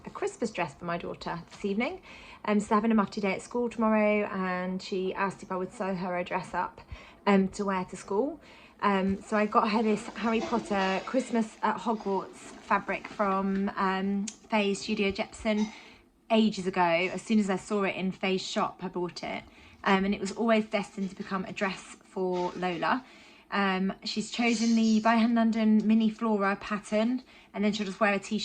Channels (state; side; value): identical; both; correlation 1.00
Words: a Christmas dress for my daughter this evening. So they're having a mufti day at school tomorrow and she asked if I would sew her a dress up to wear to school. So I got her this Harry Potter Christmas at Hogwarts fabric from Faye's Studio Jepson ages ago. As soon as I saw it in Faye's shop, I bought it. And it was always destined to become a dress for Lola. She's chosen the By Hand London mini flora pattern, and then she'll just wear a